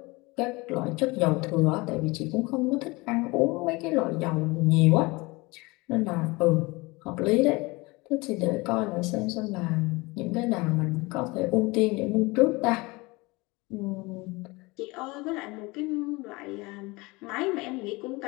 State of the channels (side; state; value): right; quieter; 24.1 dB